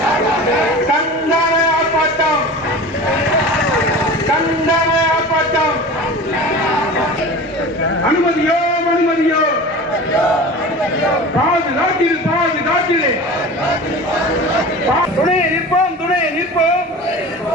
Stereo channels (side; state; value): both; normal; correlation 0.35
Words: அனுமதியோ அனுமதியோ பாதுகாட்டில் பாதுகாட்டிலே துணையை நிற்போம், துணையை நிற்போம்.